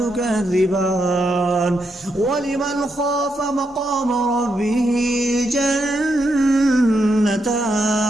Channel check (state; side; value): normal; both; correlation 0.81